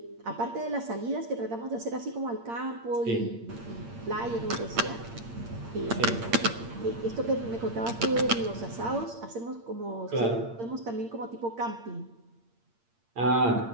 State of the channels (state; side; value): late; left; 8.7 ms